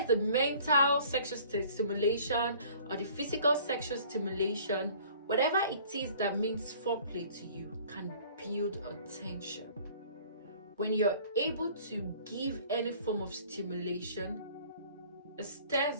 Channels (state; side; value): inverted; both; correlation -0.52